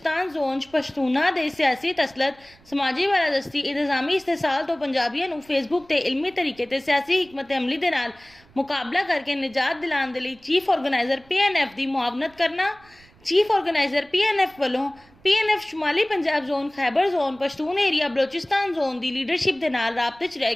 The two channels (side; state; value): right; noise; rumble, 28 dB below the sound